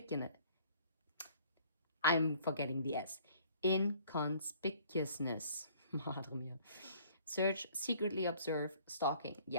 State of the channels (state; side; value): inverted; both; correlation -0.57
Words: I'm forgetting the S. Inconspicuousness. Madre mia. Search, secretly observe, stalking.